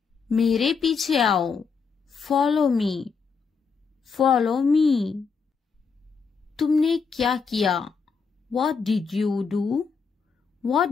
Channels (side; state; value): right; quieter; 5.4 dB